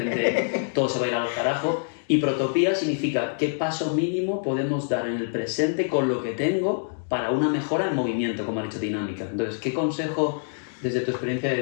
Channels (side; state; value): right; silent; digital silence